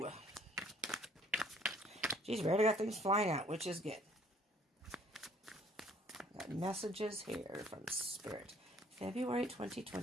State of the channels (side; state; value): both; normal; correlation 0.58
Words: Geez, we already got things flying out, which is good. Got messages here from Spirit. February